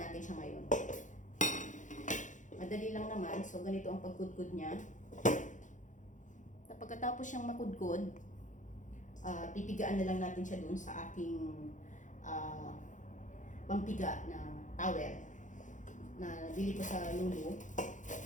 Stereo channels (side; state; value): right; late; 0.36 ms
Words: natin siya ngayon. Madali lang naman. So, ganito ang pagkudkod niya. Pagkatapos siyang makudkod, pipigaan na lang natin siya dun sa aking pampiga na towel na nabili ko sa Lulu.